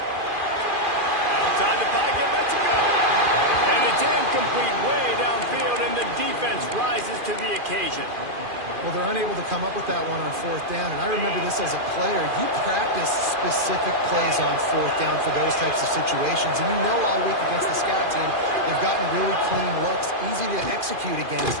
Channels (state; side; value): late; left; 2.4 ms